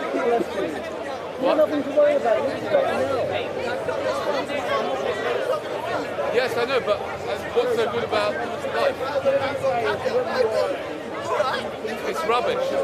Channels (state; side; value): identical; both; correlation 1.00